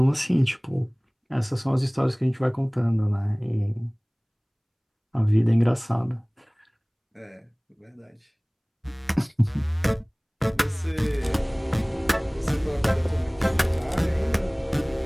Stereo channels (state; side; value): identical; both; correlation 1.00